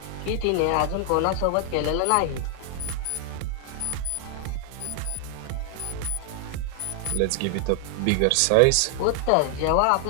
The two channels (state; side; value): different; both; correlation 0.00